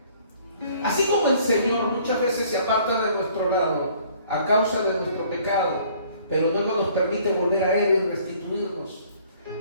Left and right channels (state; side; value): inverted; both; correlation -0.57